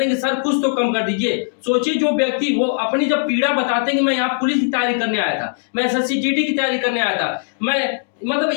हैं कि सर कुछ तो कम कर दीजिए। सोचिए, जो व्यक्ति वो अपनी जब पीड़ा बताते हैं कि मैं यहाँ पुलिस की तैयारी करने आया था, मैं SSC GD की तैयारी करने आया था, मैं मतलब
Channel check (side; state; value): right; silent; digital silence